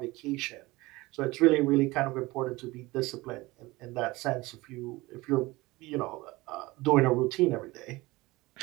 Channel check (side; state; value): left; quieter; 21.1 dB